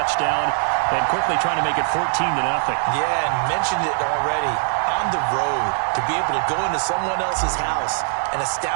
and quickly trying to make it 14-0. Yeah, and mentioned it already. On the road, to be able to go into someone else's house and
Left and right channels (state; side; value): silent; left; 58 dB below the other